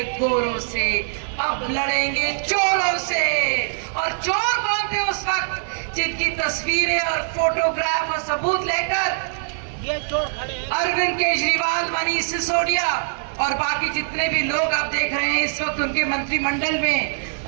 गोरों से, अब लड़ेंगे चोरों से। और चोर कौन थे उस वक्त? जिनकी तस्वीरें और फोटोग्राफ और सबूत लेकर ये चोर खड़े हैं। अरविंद केजरीवाल, मनीष सिसोदिया और बाकी जितने भी लोग आप देख रहे हैं इस वक्त उनके मंत्रिमंडल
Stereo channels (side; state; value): left; silent; digital silence